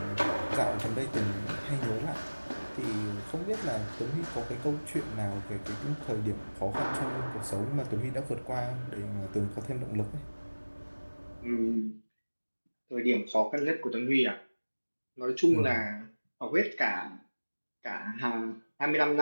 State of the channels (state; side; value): inverted; both; correlation -1.00